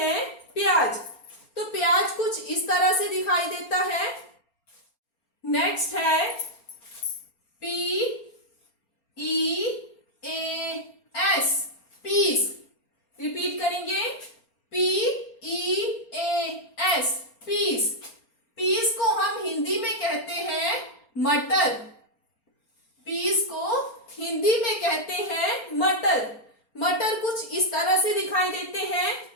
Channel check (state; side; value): late; right; 4.3 ms